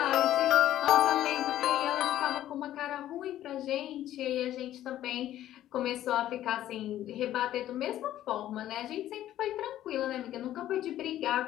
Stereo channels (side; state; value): right; quieter; 12.9 dB